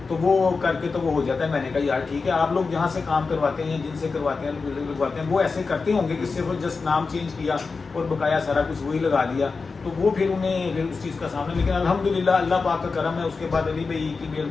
तो वो करके तो वो हो जाता है। मैंने कहा यार ठीक है, आप लोग जहाँ से काम करवाते हैं या जिनसे करवाते हैं लगवाते हैं, वो ऐसे करते होंगे कि सिर्फ जस्ट नाम चेंज किया और बकाया सारा कुछ वही लगा दिया, तो वो फिर उन्हें उस चीज़ का सामना। लेकिन अल्हम्दुलिल्लाह अल्लाह पाक का करम है, उसके बाद अली भाई की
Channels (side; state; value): right; quieter; 4.5 dB